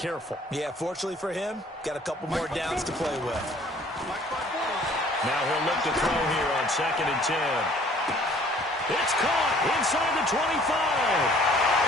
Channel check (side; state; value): both; normal; correlation 0.55